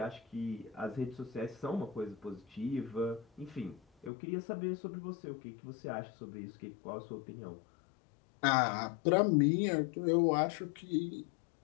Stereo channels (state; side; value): drops out; right; at 4.1 s